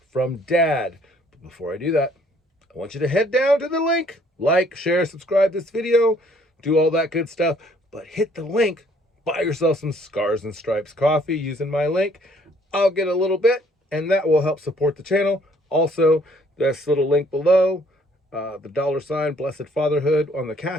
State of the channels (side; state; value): both; normal; correlation 0.62